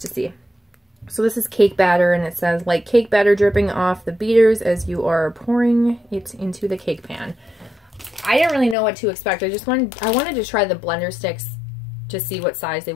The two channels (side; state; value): right; drops out; at 8.8 s